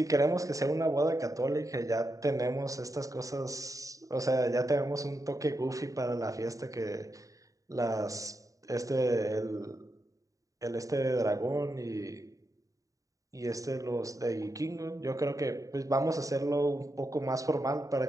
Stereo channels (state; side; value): late; left; 0.16 ms